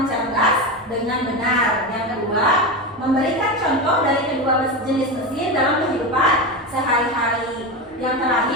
cerdas dengan benar. Yang kedua, memberikan contoh dari kedua jenis mesin dalam kehidupan sehari-hari. Yang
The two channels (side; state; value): both; normal; correlation 0.19